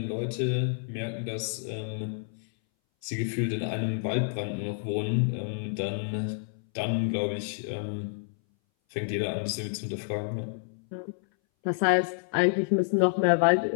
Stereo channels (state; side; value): silent; right; 59 dB below the other